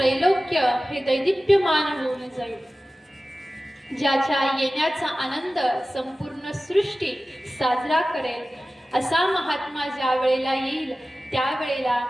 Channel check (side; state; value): both; normal; correlation 0.96